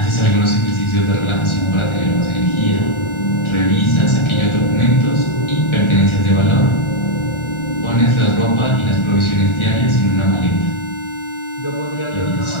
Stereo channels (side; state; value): right; late; 1.4 ms